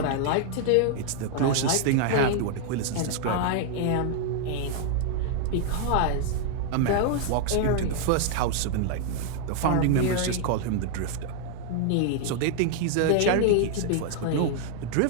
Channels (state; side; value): different; both; correlation 0.00